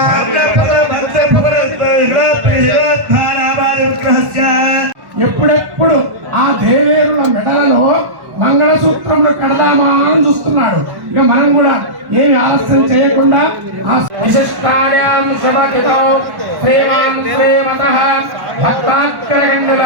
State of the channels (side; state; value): left; late; 1.1 ms